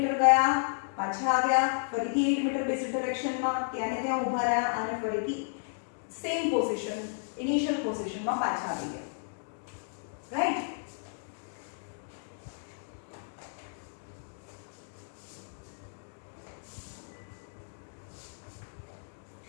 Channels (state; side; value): silent; right; digital silence